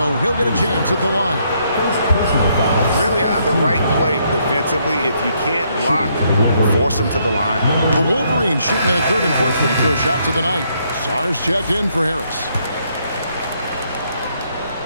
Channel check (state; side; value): inverted; both; correlation -0.72